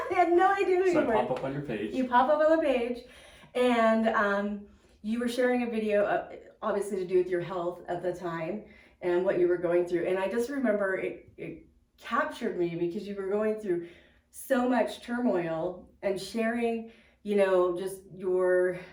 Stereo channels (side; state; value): both; identical; correlation 1.00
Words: I had no idea who you were. So I pop up on your page. You pop up on the page, and you were sharing a video, obviously to do with your health at the time and what you were going through. And I just remember it captured me because you were going through so much turmoil and sharing, just your